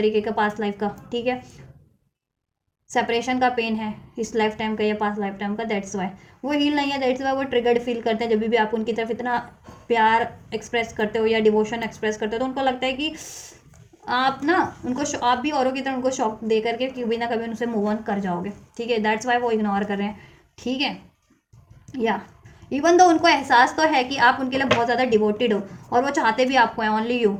का पास्ट लाइफ का, ठीक है। सेपरेशन का पेन है इस लाइफ टाइम का या पास्ट लाइफ टाइम का, दैट्स वाई वो हील नहीं है, दैट्स वाई वो ट्रिगर्ड फील करते हैं जब भी आप उनकी तरफ इतना प्यार एक्सप्रेस करते हो या डिवोशन एक्सप्रेस करते हो, तो उनको लगता है कि आप ना उनको, आप भी औरों की तरह उनको शॉक दे करके कभी ना कभी उनसे मूव ऑन कर जाओगे, ठीक है। दैट्स वाई वो इग्नोर कर रहे हैं, ठीक है। या इवन दो उनको एहसास तो है कि आप उनके लिए बहुत ज़्यादा डिवोटेड हो, और वो चाहते भी आपको हैं, ओनली यू,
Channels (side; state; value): both; identical; correlation 1.00